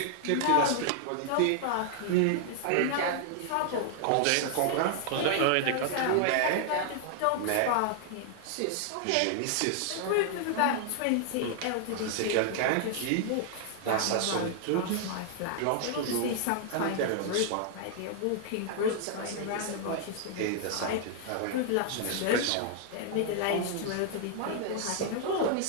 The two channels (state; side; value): different; both; correlation 0.00